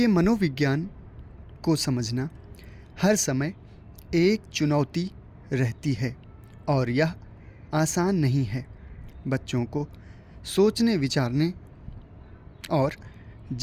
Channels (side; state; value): both; identical; correlation 1.00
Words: मनोविज्ञान को समझना हर समय एक चुनौती रहती है और यह आसान नहीं है। बच्चों को सोचने, विचारने और